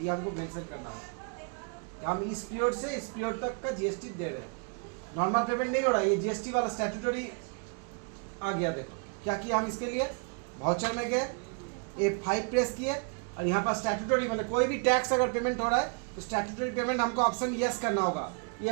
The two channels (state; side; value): quieter; left; 37.6 dB